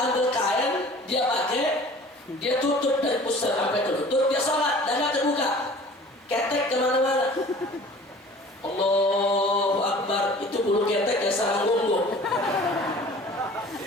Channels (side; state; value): both; normal; correlation 0.46